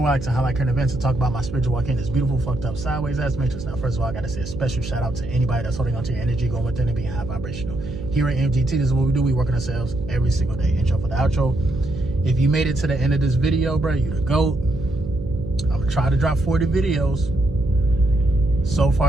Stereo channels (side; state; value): right; noise; hum, 10 dB below the sound